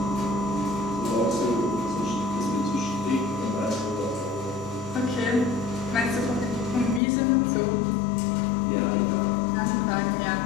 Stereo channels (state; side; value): drops out; right; at 7.0 s